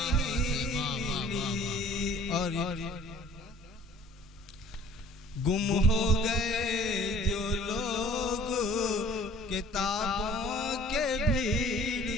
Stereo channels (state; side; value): normal; both; correlation 0.51